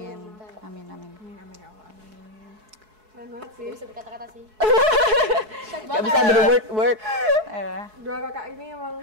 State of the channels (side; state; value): left; late; 4.7 ms